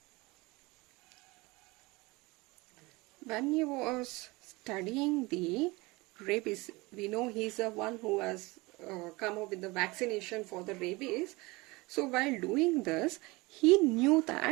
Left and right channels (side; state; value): left; quieter; 23.6 dB